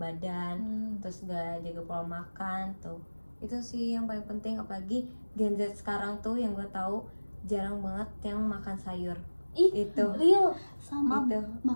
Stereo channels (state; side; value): inverted; both; correlation -1.00